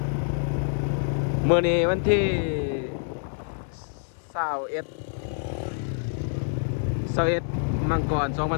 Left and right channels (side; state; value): right; silent; 61 dB below the other